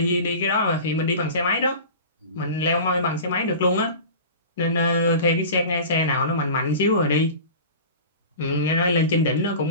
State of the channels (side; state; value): both; inverted; correlation -0.36